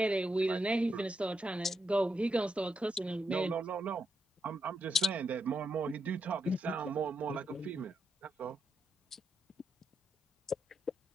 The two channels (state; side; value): normal; both; correlation 0.83